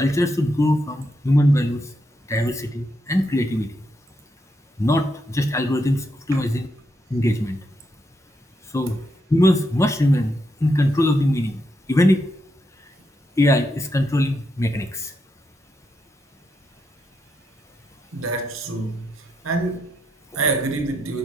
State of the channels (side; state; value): both; normal; correlation 0.81